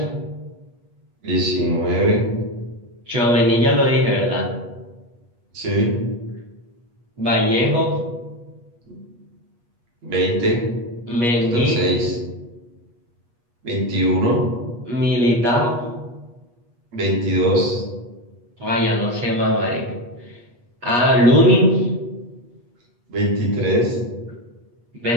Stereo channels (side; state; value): left; late; 8.3 ms